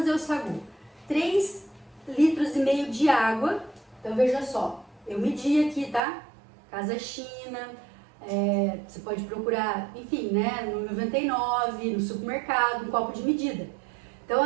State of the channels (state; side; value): drops out; left; at 6.0 s